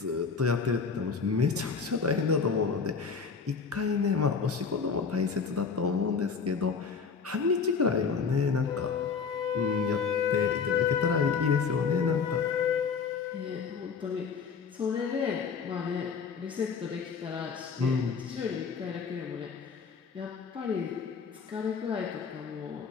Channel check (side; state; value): right; quieter; 5.6 dB